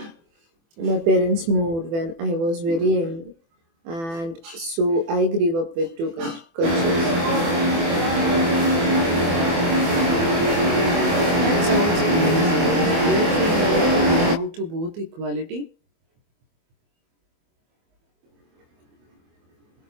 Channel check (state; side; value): late; left; 24 ms